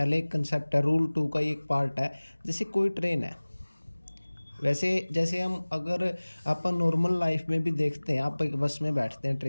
एक कंसेप्ट है, रूल 2 का ही एक पार्ट है। जैसे कोई ट्रेन है, वैसे जैसे हम अगर अपन नॉर्मल लाइफ में भी देखते हैं, आप एक बस में बैठते हैं,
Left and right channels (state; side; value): inverted; both; correlation -1.00